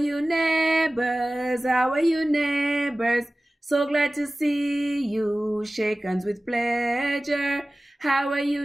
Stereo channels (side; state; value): both; normal; correlation 0.97